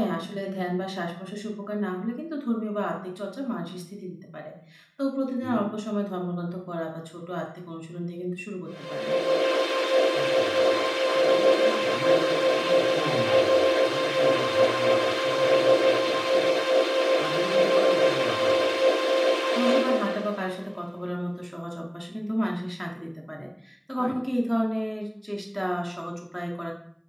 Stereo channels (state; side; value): identical; both; correlation 1.00